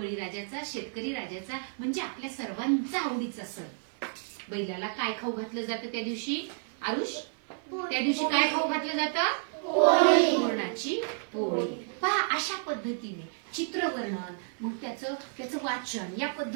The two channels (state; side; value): silent; left; 57 dB below the other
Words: शेतकरी राजाचा म्हणजे आपल्या सर्वांचा आवडीचा सण. बैलाला काय खाऊ घातलं जातं त्या दिवशी? आरुष, त्या दिवशी काय खाऊ घातलं जातं? पुरणाची पोळी. पहा अशा पद्धतीने चित्रवर्णन मग त्याचं वाचन या